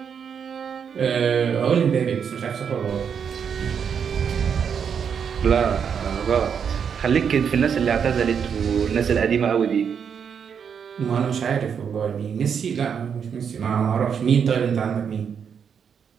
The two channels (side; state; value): left; quieter; 7.2 dB